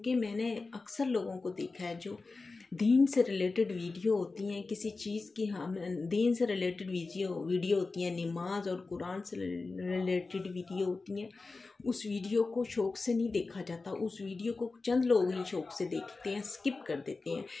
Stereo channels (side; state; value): right; quieter; 3.8 dB